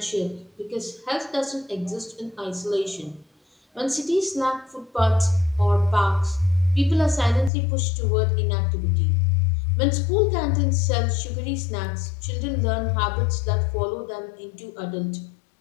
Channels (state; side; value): drops out; right; at 7.5 s